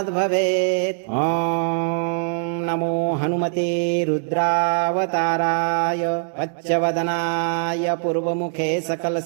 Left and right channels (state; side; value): silent; left; digital silence